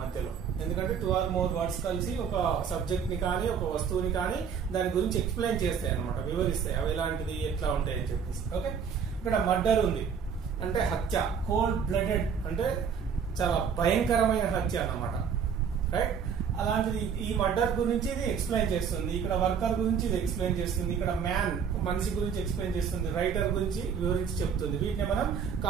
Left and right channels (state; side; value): quieter; left; 6.9 dB